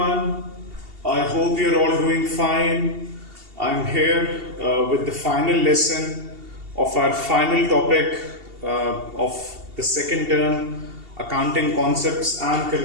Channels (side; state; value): left; late; 2.7 ms